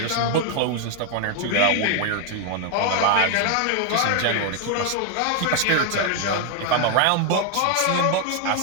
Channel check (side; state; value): both; different; correlation 0.01